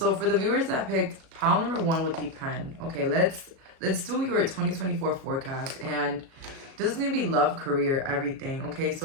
for the viewers that picked pile number 1 with the pen, okay, let's do your 2024 forecast. And this is going to be love, career, everything. Okay,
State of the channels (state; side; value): late; left; 37 ms